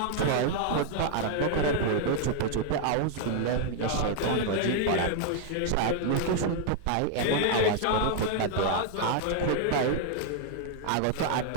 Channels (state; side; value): different; both; correlation 0.00